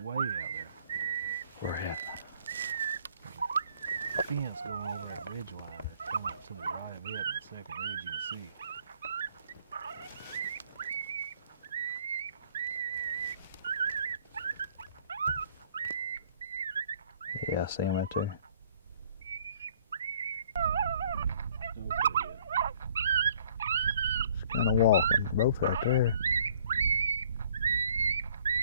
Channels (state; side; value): inverted; both; correlation -0.60